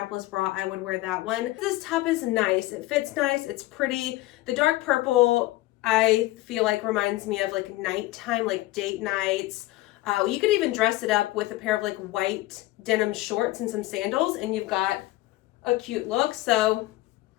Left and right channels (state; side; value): quieter; right; 18.2 dB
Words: bra, I would wear that one. This top is nice. It fits nice. It's pretty. The dark purple, I feel like reminds me of like nighttime, like date nights. You could even dress it up with a pair of like white denim shorts and some sandals, and you've got a cute look. So